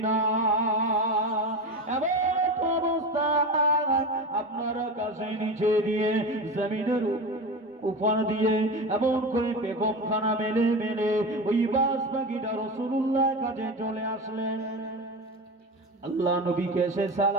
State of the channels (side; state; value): both; normal; correlation 0.24